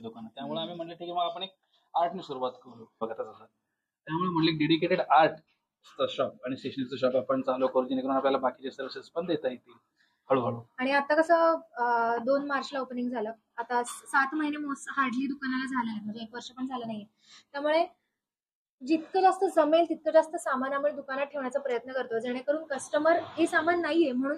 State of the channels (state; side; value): identical; both; correlation 1.00